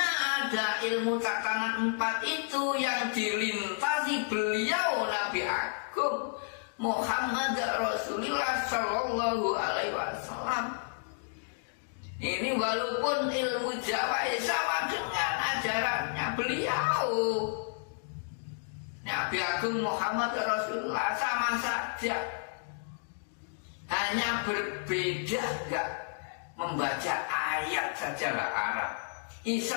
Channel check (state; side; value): silent; right; digital silence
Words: ada ilmu tatanan 4 itu yang dilintasi beliau Nabi Agung Muhammad Rasulullah Sallallahu Alaihi Wasallam. Ini walaupun ilmu Jawa sama dengan ajarannya beliau Nabi Agung Muhammad Rasulullah, sama saja, hanya berbeda enggak membaca ayat sajalah Arab.